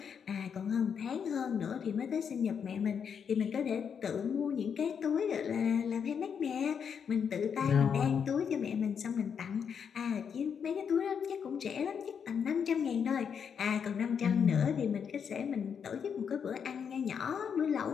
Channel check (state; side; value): quieter; right; 7.1 dB